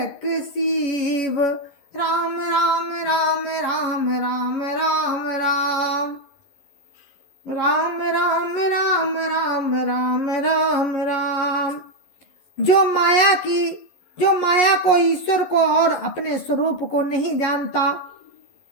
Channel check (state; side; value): late; right; 11 ms